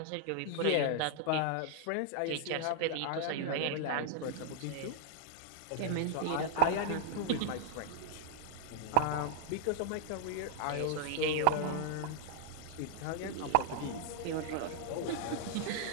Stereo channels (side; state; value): both; different; correlation -0.01